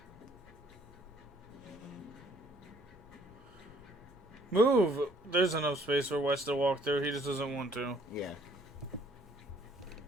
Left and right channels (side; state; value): both; normal; correlation 0.61